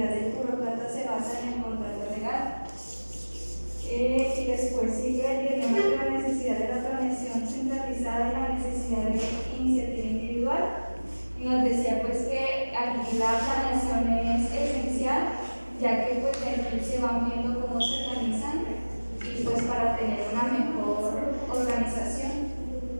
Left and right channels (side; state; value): both; inverted; correlation -1.00